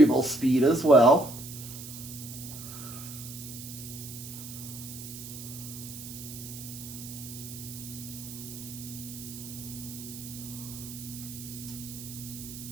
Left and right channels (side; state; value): right; noise; hiss, 11 dB below the sound